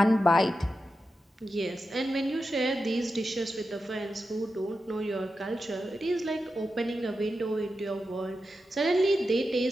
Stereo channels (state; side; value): normal; both; correlation 0.90